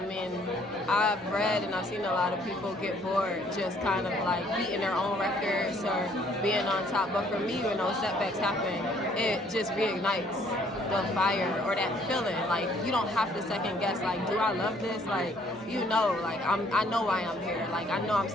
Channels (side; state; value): both; normal; correlation 0.63